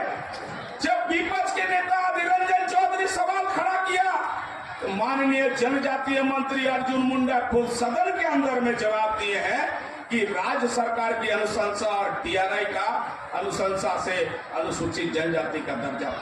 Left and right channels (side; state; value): both; identical; correlation 1.00